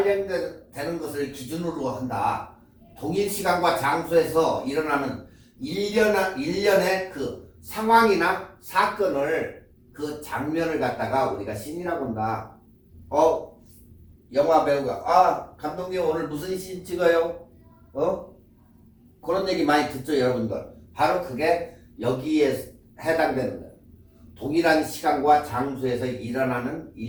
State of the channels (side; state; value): both; identical; correlation 1.00